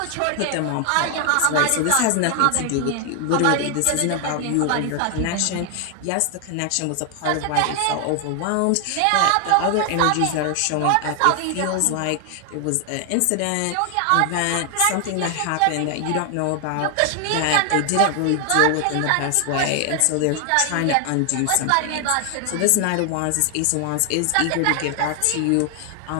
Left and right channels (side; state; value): both; different; correlation 0.00